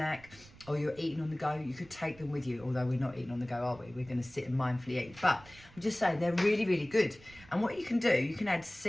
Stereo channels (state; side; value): noise; right; rumble, 22 dB below the sound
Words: or you're eating on the go, you could take them with you, although we're not eating on the go, are we? We're going to sit and mindfully eat. But I'm just saying they're really good. And what you can do, you can add